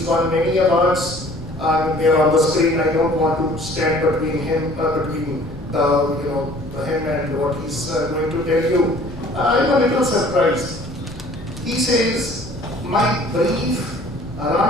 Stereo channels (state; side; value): noise; left; rumble, 18 dB below the sound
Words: won many awards. They're on the screen. I don't want to stand between him, him and what he's going to tell you. I'm a little surprised. He says, my brief